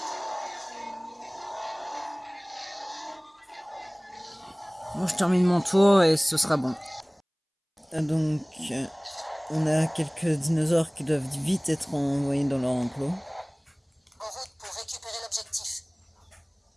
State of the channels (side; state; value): both; identical; correlation 1.00